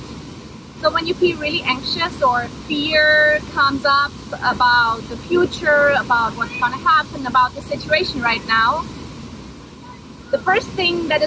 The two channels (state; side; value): identical; both; correlation 1.00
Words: So when you feel really anxious or fear comes up about the future, about what's going to happen, about the situation right now, the first thing that